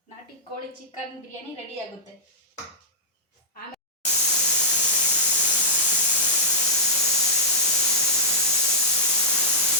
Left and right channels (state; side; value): normal; both; correlation -0.09